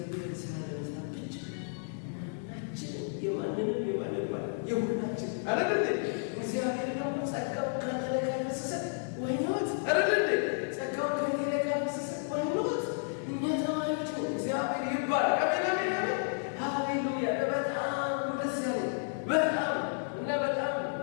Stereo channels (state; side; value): silent; right; digital silence